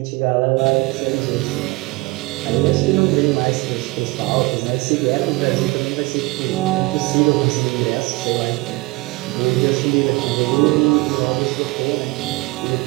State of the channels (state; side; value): quieter; left; 22.9 dB